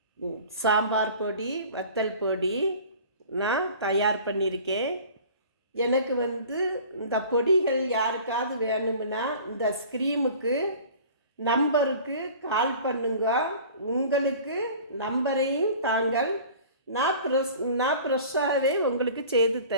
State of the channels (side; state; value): both; inverted; correlation -0.44